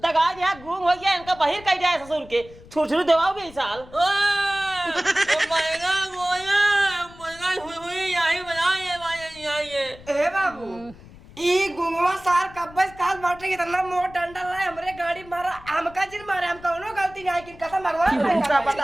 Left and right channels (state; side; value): noise; left; rumble, 20 dB below the sound